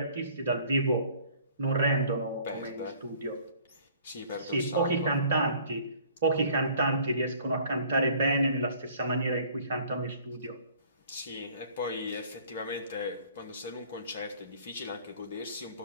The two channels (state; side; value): inverted; both; correlation -0.54